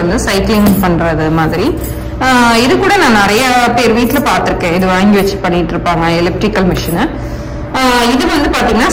வந்து சைக்கிளிங் பண்றது மாதிரி. இது கூட நான் நிறைய பேர் வீட்டுல பார்த்திருக்கேன். இது வாங்கி வச்சு பண்ணிட்டு இருப்பாங்க எலிப்டிக்கல் மிஷினை. இது வந்து பாத்தீங்கன்னா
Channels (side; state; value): both; identical; correlation 1.00